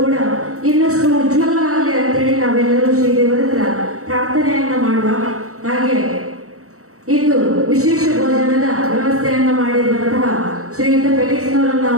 ಕೂಡ ಇನ್ನಷ್ಟು ಉಜ್ವಲವಾಗಲಿ ಅಂತೇಳಿ ನಾವೆಲ್ಲರೂ ಶ್ರೀ ದೇವರ ಹತ್ರ ಪ್ರಾರ್ಥನೆಯನ್ನ ಮಾಡುವ. ಹಾಗೆ ಇಂದು ವಿಶೇಷ ಭೋಜನದ ವ್ಯವಸ್ಥೆಯನ್ನ ಮಾಡಿರುವಂತಹ ಶ್ರೀಯುತ ಫೆಲಿಕ್ಸ್ ನವರನ್ನ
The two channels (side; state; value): left; late; 0.64 ms